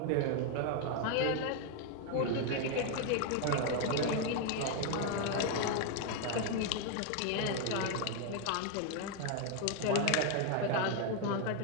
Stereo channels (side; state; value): both; different; correlation 0.01